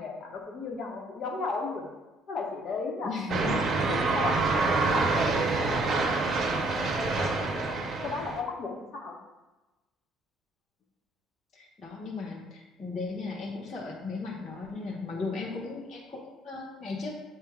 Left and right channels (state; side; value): normal; both; correlation 0.64